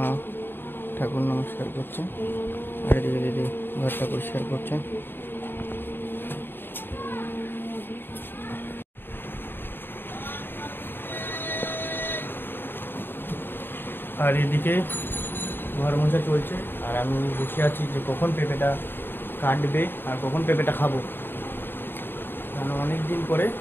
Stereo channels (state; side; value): late; right; 0.099 ms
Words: ঠাকুর নমস্কার করছে, আর এদিকে দিদি ঘরটা পরিষ্কার করছে। আর এদিকে ঘর মোছা চলছে, আর আমি বসে আছি যে কখন পেঁপেটা কাটবে আর কখন পেঁপেটা খাবো। কারণ অনেক দিন পরে